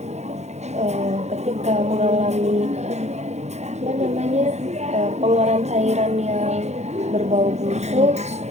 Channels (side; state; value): left; late; 0.32 ms